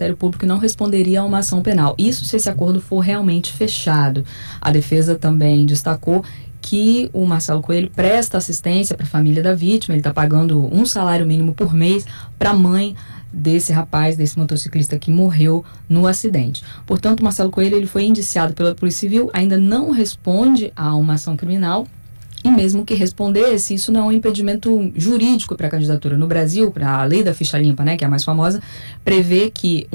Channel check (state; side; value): inverted; both; correlation -1.00